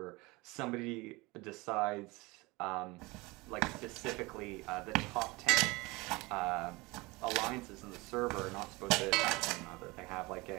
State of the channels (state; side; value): quieter; left; 23.4 dB